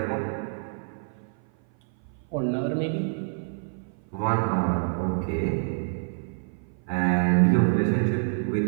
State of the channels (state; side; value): silent; left; 56 dB below the other